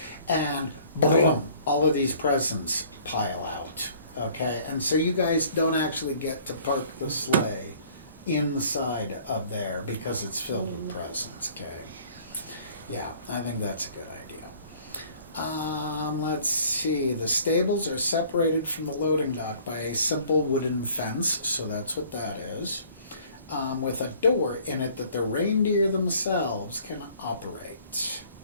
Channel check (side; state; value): both; inverted; correlation -0.54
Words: And boom, all of these presents pile out, okay? And so you guys don't actually get to park the sleigh inside of there because it's filled with presents, okay? Yeah, I think that's a good idea. Let's see. The stables are separated from the loading dock by a simple wooden fence, so that's what that is, with a door in it that the reindeer themselves can operate.